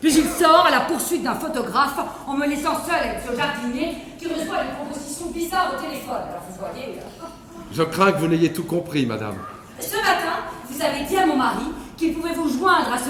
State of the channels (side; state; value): both; identical; correlation 1.00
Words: Puis il sort à la poursuite d'un photographe en me laissant seul avec ce jardinier qui reçoit une proposition bizarre au téléphone. Alors vous voyez... Je crains que vous n'ayez tout compris, madame. Ce matin, vous avez dit à mon mari qu'il pouvait vous joindre à